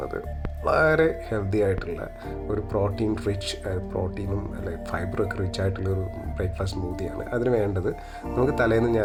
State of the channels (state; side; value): identical; both; correlation 1.00